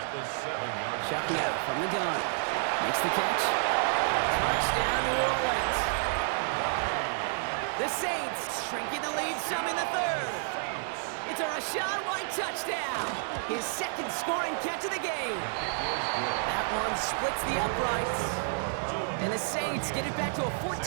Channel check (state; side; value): silent; left; digital silence